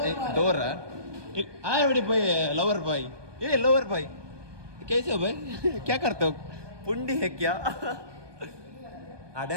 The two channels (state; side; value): late; left; 1.2 ms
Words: ಡೋರ ಆಯ್ ಬಾಯ್ ಲವರ್ ಬಾಯ್ ಲವರ್ ಬಾಯ್ कैसे हो भाई क्या करते हो पुंडी है क्या